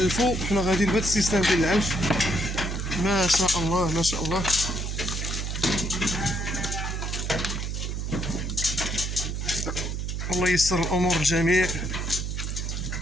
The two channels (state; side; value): noise; right; hum, 3 dB below the sound